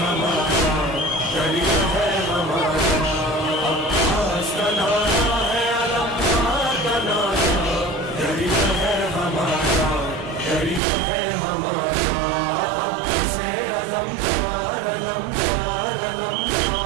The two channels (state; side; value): drops out; left; at 10.8 s